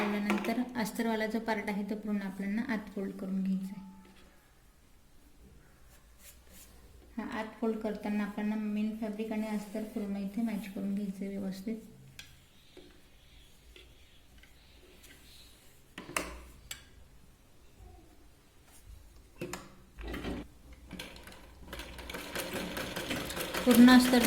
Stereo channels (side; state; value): both; identical; correlation 1.00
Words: अस्तरवाला जो पार्ट आहे तो पूर्ण आपल्याला आत फोल्ड करून घ्यायचा आहे. हा आत फोल्ड करताना आपल्याला मेन फॅब्रिक आणि अस्तर पूर्ण इथे मॅच करून घ्यायचं आहे व्यवस्थित. पूर्ण अस्तर